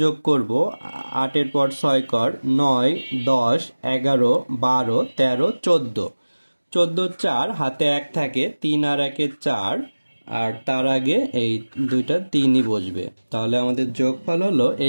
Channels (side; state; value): both; inverted; correlation -1.00